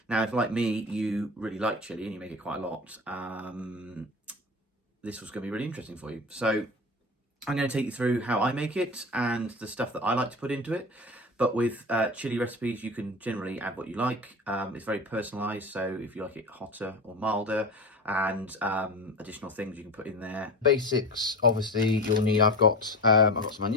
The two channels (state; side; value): normal; both; correlation 0.29